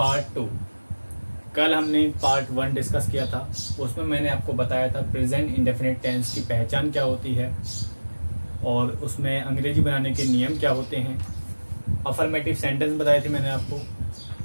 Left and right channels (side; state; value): both; inverted; correlation -1.00